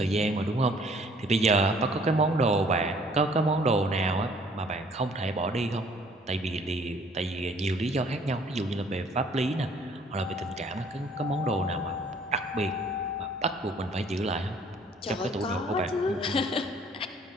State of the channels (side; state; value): both; normal; correlation 0.58